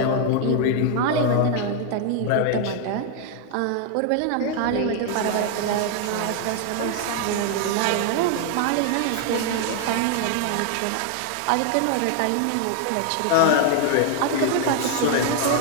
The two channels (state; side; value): different; both; correlation 0.00